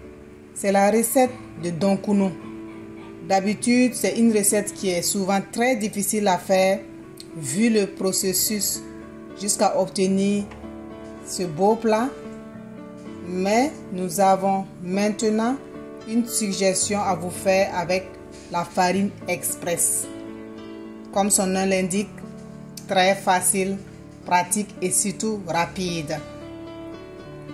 C'est la recette de Donkuno. D'habitude, c'est une recette qui est souvent très difficile à faire vu le processus jusqu'à obtenir ce beau plat. Mais nous avons maintenant une suggestion à vous faire avec la farine express. Comme son nom l'indique, très facile, pratique et surtout rapide.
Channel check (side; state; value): both; identical; correlation 1.00